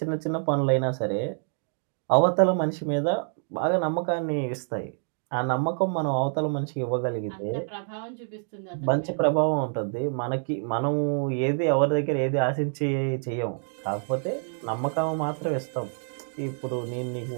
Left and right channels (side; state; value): left; silent; digital silence